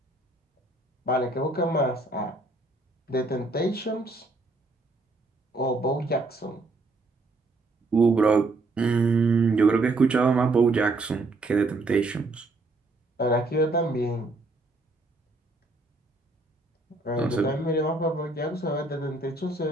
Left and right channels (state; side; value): quieter; left; 3.1 dB